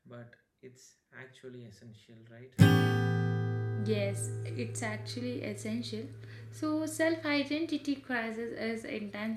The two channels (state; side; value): identical; both; correlation 1.00